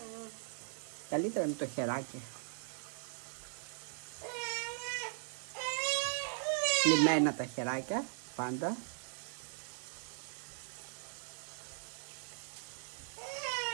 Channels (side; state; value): left; silent; digital silence